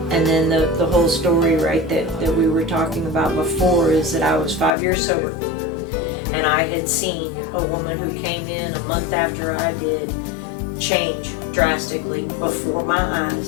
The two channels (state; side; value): drops out; right; at 4.7 s